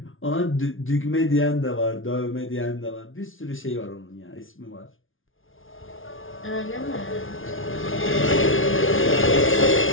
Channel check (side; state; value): right; late; 0.58 ms